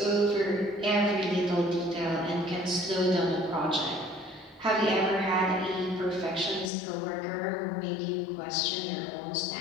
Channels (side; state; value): right; drops out; at 6.7 s